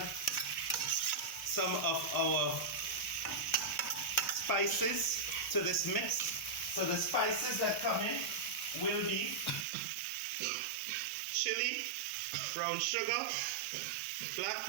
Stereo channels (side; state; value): left; drops out; at 9.7 s